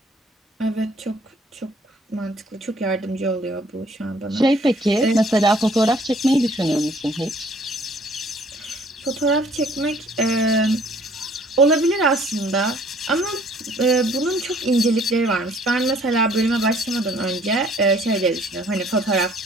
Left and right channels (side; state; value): both; normal; correlation 0.59